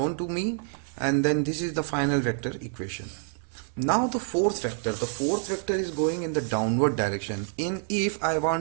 to me, and then this is the final vector equation. Now the fourth vector is going in the downward direction. If I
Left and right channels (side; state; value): left; silent; 60 dB below the other